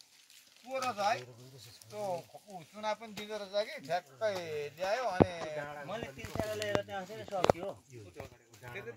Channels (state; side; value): identical; both; correlation 1.00